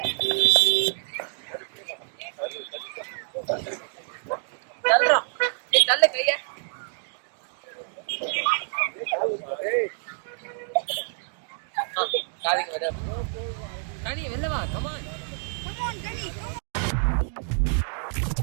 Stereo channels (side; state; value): left; silent; 60 dB below the other